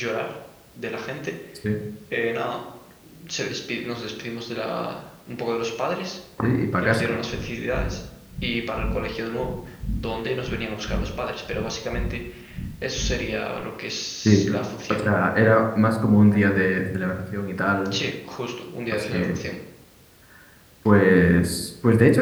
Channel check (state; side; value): identical; both; correlation 1.00